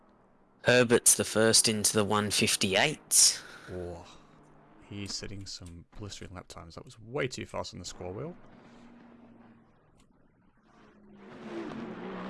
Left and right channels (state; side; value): identical; both; correlation 1.00